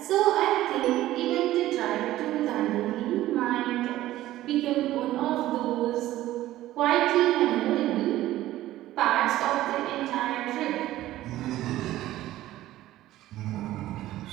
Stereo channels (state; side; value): quieter; left; 14.9 dB